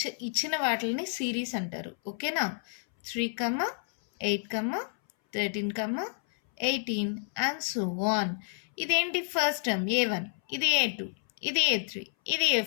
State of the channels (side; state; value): right; silent; 58 dB below the other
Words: ఇచ్చిన వాటిని సిరీస్ అంటారు. ఓకేనా? 3, 8, 13, 18 అండ్ సో ఆన్. ఇదేంటి? ఫస్ట్ టర్మ్ A1, ఇది A2, ఇది A3, ఇది